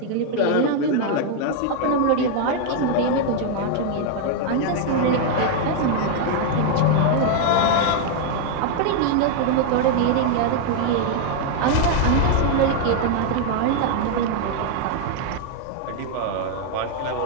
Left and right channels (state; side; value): different; both; correlation 0.00